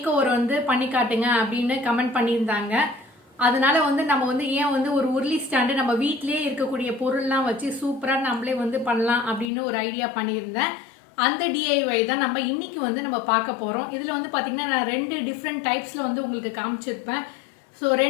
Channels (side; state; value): right; drops out; at 9.5 s